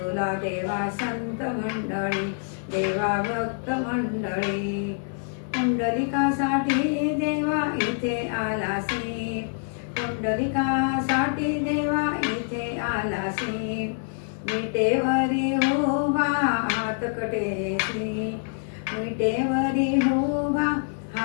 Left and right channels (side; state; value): right; silent; 61 dB below the other